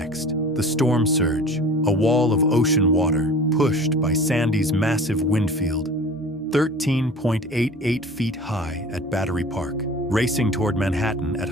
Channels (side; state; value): both; normal; correlation 0.41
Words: The storm surge, a wall of ocean water pushed by Sandy's massive wind field, 13.88 feet high at Battery Park, racing toward Manhattan at